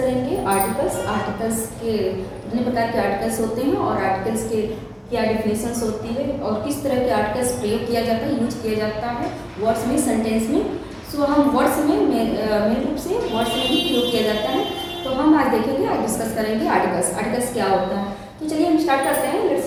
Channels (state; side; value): identical; both; correlation 1.00